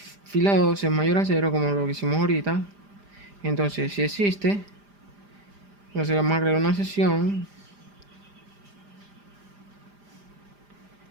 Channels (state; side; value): late; left; 5.0 ms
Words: 2 es mayor a 0, como lo que hicimos ahorita, entonces si existe, entonces vamos a crear una sesión.